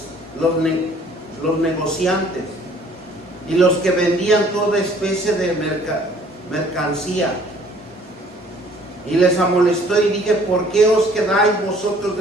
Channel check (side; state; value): both; normal; correlation 0.56